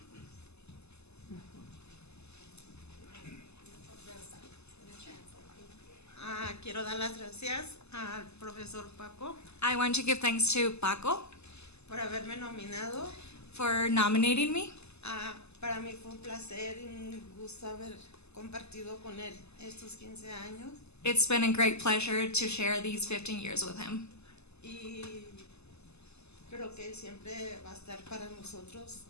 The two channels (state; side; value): late; right; 0.80 ms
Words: Quiero dar las gracias al profesor Paco I want to give thanks to Paco por haberme nominado. for nominating me. Para mí fue un placer y un gusto haber compartido con él estos 15 años. It's been a great pleasure to share these 15 years with him. Y creo que él siempre va a estar para nosotros